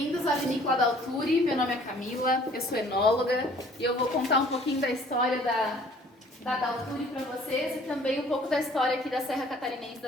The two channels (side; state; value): both; normal; correlation 0.55